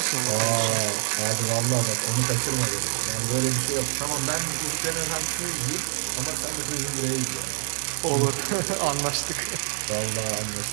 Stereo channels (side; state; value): left; silent; 61 dB below the other